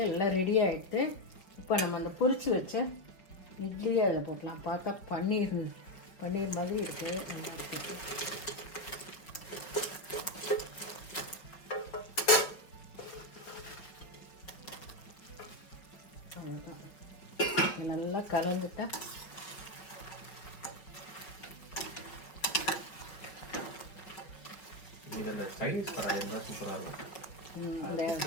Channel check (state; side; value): late; right; 5.5 ms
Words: எல்லாம் ரெடி ஆகிடுது. இப்போ நம்ம அந்த பொரிச்சு வச்ச இட்லியை அதில் போட்டலாம். பார்த்தா பன்னீர் மாதிரி இருக்குது. நல்லா கலந்துட்டா சைனீஸ் கடாய் இருந்தால் சூப்பராக இருக்கும். ஒரே